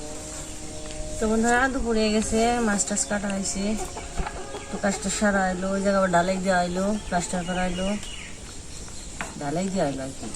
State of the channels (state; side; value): identical; both; correlation 1.00